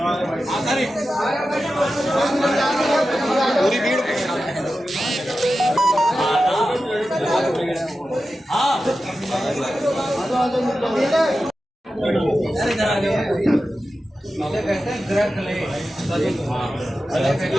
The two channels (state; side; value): normal; both; correlation 0.92